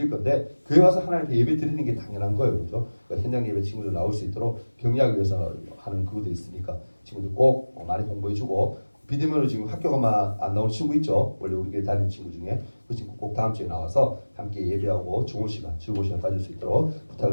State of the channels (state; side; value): inverted; both; correlation -1.00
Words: 건데 교회 와서 하나님께 예배 드리는 게 당연한 거예요, 그렇죠? 그러니까 현장 예배 친구들 나올 수 있도록 격려하기 위해서 하는 그것도 있으니까 친구들 꼭 많이 공부해주고 비대면으로 지금 학교가만 안 나오는 친구 있죠? 원래 우리 교회 다니는 친구 중에 그 친구 꼭 다음 주에 나와서 함께 예배하고 좋은 시간, 즐거운 시간 가질 수 있도록